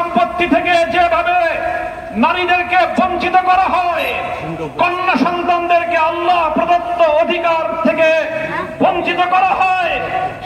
থেকে যেভাবে নারীদেরকে বঞ্চিত করা হয়, কন্যা সন্তানদেরকে আল্লাহ প্রদত্ত অধিকার থেকে বঞ্চিত করা হয়,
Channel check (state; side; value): identical; both; correlation 1.00